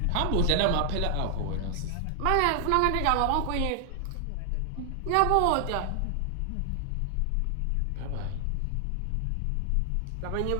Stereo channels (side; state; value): both; different; correlation 0.00